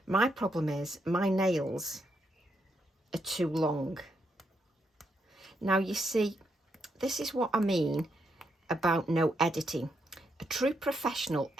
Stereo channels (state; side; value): normal; both; correlation 0.79